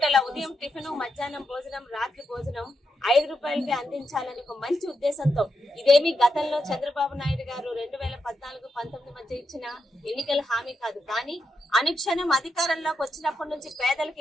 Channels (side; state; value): both; normal; correlation 0.84